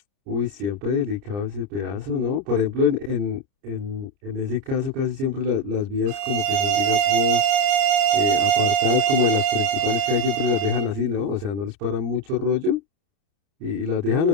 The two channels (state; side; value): late; left; 30 ms